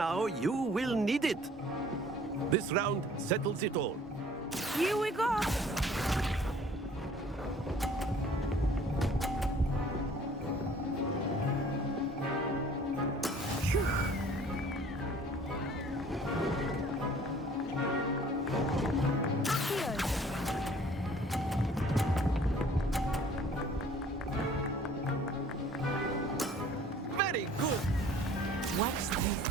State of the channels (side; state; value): both; normal; correlation 0.53